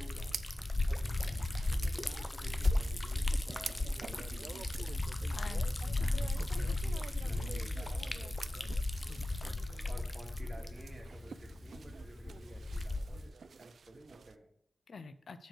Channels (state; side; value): normal; both; correlation 0.95